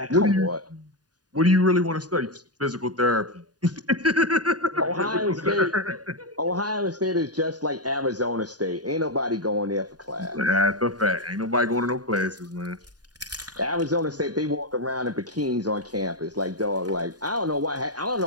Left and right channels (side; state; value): left; late; 0.69 ms